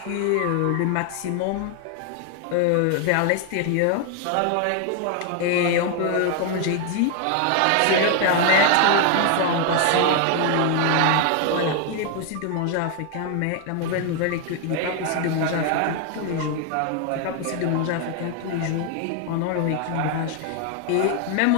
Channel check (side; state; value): both; different; correlation 0.00